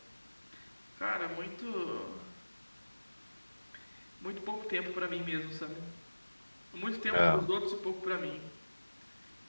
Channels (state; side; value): inverted; both; correlation -1.00